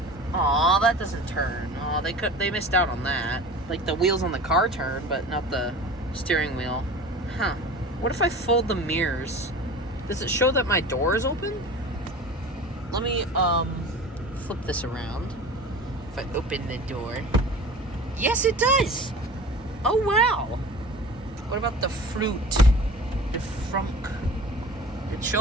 Aw, that doesn't turn. Aw, they missed out on that. Like, the wheels on the car turn, but not the steering wheel. Huh. What if I fold the mirrors? Does it show that my door is open? Let me, flip this around. If I open the door. Yes, it does! Oh, wow! What about the fruit? The frunk? It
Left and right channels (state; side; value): normal; both; correlation 0.38